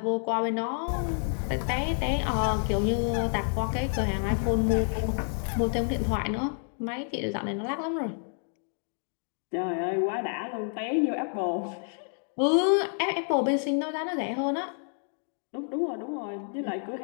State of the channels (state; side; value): silent; right; 58 dB below the other